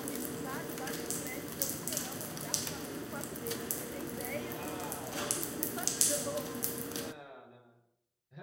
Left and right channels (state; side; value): identical; both; correlation 1.00